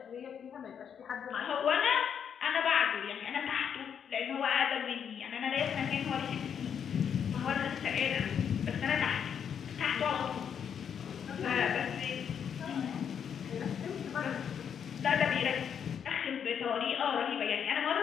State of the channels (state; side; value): quieter; right; 7.9 dB